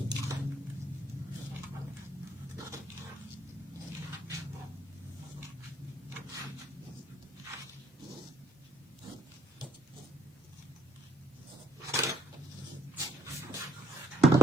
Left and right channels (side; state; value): both; normal; correlation 0.66